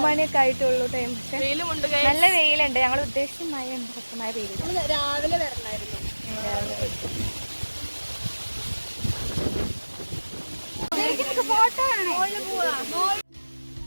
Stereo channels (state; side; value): inverted; both; correlation -1.00